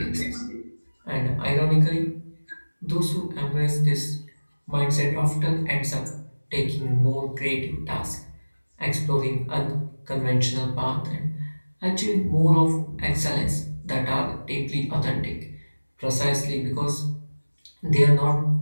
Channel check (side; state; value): both; inverted; correlation -1.00